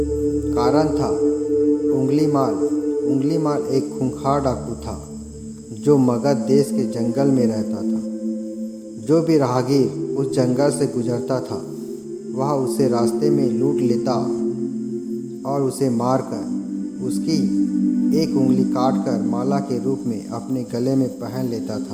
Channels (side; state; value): both; identical; correlation 1.00